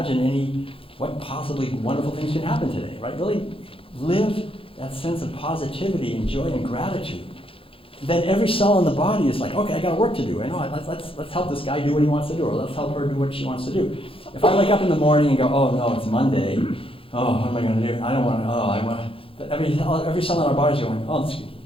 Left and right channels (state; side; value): late; right; 0.27 ms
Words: what possibly wonderful things can happen today, right? Really live that sense of positivity and joy and gratitude. Then every cell in the body is like, okay, I got work to do. I know, let's help this guy do what he wants to do, or let's help her do what she wants to do. If I wake up in the morning and go, oh no, it's Monday, oh, what am I going to do? I don't want to, I want to. Every cell in our body is going, oh,